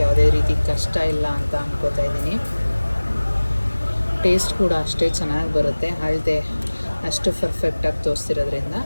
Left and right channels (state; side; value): inverted; both; correlation -1.00